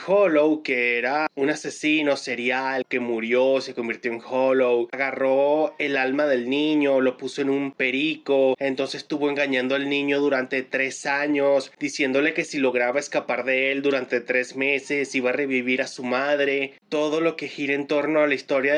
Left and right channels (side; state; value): both; identical; correlation 1.00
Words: Hollow, que era un asesino serial que murió, se convirtió en Hollow, agarró el alma del niño, lo puso en un perico, entonces estuvo engañando al niño durante 3 años, diciéndole que si lograba escapar de él durante 3 meses iba a revivir a su madre. Todo lo que gira en torno a la historia